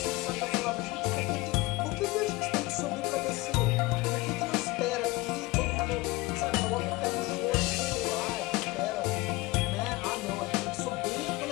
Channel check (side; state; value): right; quieter; 21.6 dB